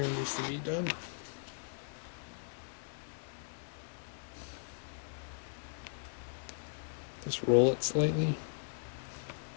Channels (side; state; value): right; silent; 52 dB below the other